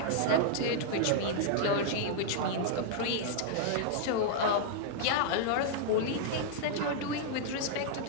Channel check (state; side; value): different; both; correlation -0.01